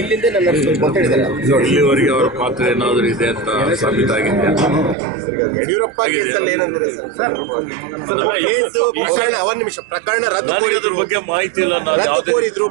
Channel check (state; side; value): drops out; left; at 5.0 s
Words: ನಡೆಸಬೇಕು ಅಂತ ಹೇಳಿದ್ದಾರೆ. ಇಲ್ಲಿವರೆಗೆ ಅವರ ಪಾತ್ರ ಏನಾದರೂ ಇದೆ ಅಂತ ಸಾಬೀತಾಗಿದೆ. ಯಡಿಯೂರಪ್ಪ ಕೇಸಲ್ಲಿ ಏನಂದ್ರೆ ಒಂದ್ ನಿಮಿಷ ಪ್ರಕರಣ ರದ್ದು ಬಗ್ಗೆ ಮಾಹಿತಿ ಇಲ್ಲ. ರದ್ದು ಕೋರಿದ್ರು,